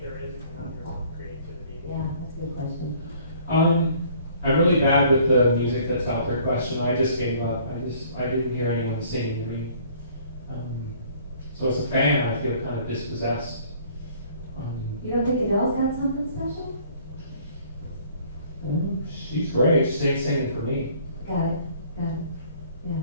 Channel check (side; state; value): both; inverted; correlation -0.56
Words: there is a conundrum of creativity? Yeah, that's a good question. I'm really bad with the music that's out there question. I just gave up. I didn't hear anyone singing to me. So as a fan, I feel kind of dispossessed. You don't think Adele's got something special? She's great. She ain't singing for me. Got it. Yeah.